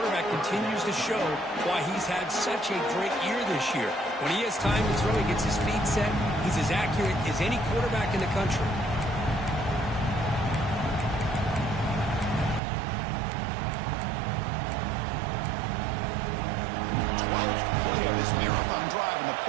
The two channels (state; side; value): drops out; left; at 12.6 s